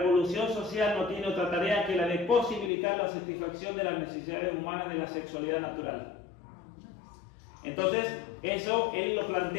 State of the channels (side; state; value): right; drops out; at 2.7 s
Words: social no tiene otra tarea que la de posibilitar la satisfacción de las necesidades humanas de la sexualidad natural. Entonces, eso él lo